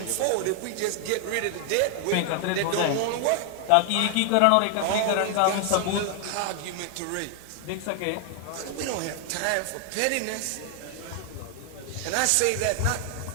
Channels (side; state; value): both; different; correlation 0.00